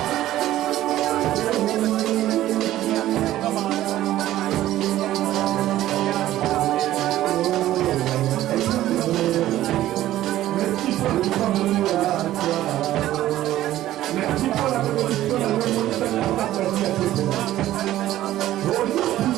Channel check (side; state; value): left; quieter; 14.1 dB